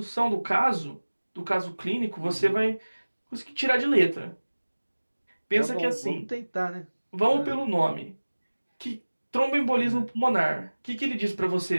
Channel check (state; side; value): inverted; both; correlation -1.00